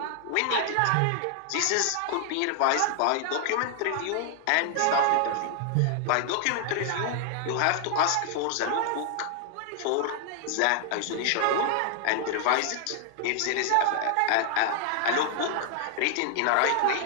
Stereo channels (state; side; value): different; both; correlation 0.00